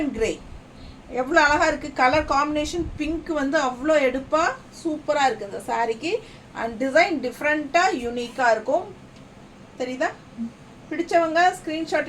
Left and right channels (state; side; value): identical; both; correlation 1.00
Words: கிரே. எவ்வளோ அழகாக இருக்குது கலர் காம்பினேஷன். பிங்க் வந்து அவ்வளோ எடுப்பாக சூப்பராக இருக்குது இந்த சாரீக்கு. அண்ட் டிசைன் டிஃப்ரெண்ட்டாக யூனிக்காக இருக்கும். தெரியுதா? பிடிச்சவங்க